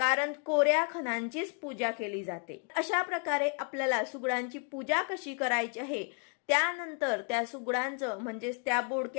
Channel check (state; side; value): quieter; right; 39.2 dB